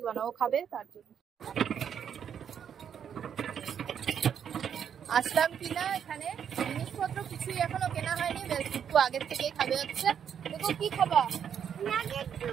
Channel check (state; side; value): quieter; left; 8.3 dB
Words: না, ও খাবে তার জন্য। আসলাম কিনা এখানে, জিনিসপত্র কিছুই এখনো কেনা হয়নি, একটু আগের থেকেই খাবে হচ্ছে। দেখো কি খাবা? নাগের